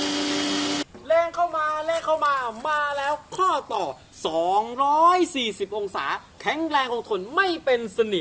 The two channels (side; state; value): both; identical; correlation 1.00